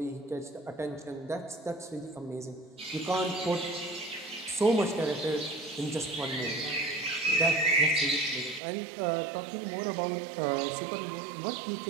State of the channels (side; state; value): left; drops out; at 8.6 s